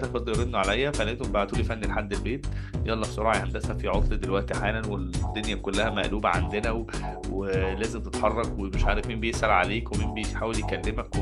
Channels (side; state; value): both; identical; correlation 1.00